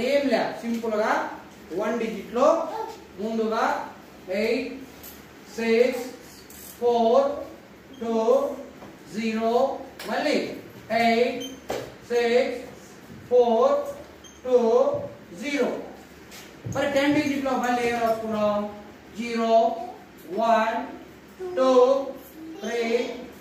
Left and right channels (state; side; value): identical; both; correlation 1.00